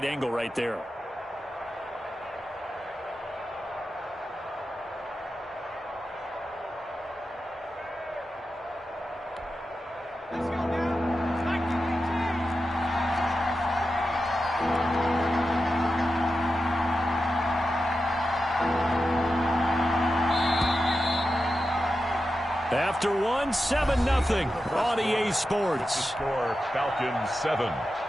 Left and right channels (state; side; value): normal; both; correlation 0.91